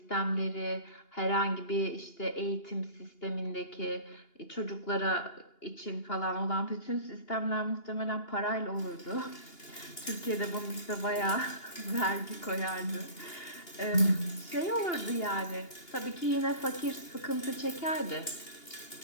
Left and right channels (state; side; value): late; right; 2.8 ms